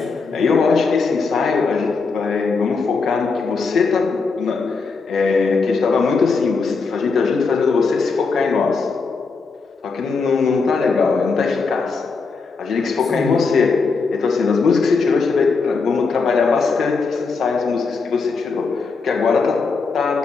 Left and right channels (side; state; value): right; quieter; 4.5 dB